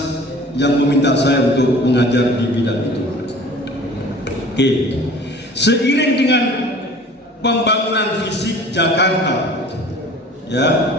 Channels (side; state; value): both; normal; correlation 0.46